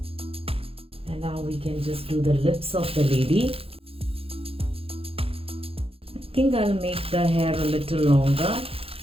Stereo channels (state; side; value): late; left; 0.27 ms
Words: And now we can just do the lips of the lady. I think I'll make the hair a little longer.